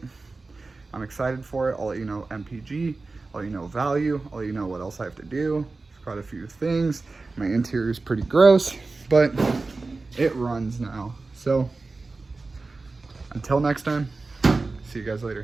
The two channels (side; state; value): left; quieter; 3.7 dB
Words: I'm excited for it. I'll let you know MPG, I'll let you know value, I'll let you know what else I have to do. There's quite a few things. My interior is pretty gross, but it runs now. So until next time, see you guys